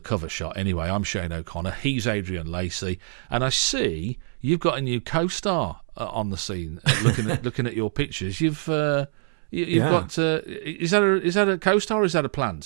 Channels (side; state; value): left; silent; 62 dB below the other